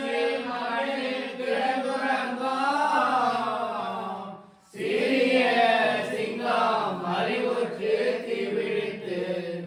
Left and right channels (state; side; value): identical; both; correlation 1.00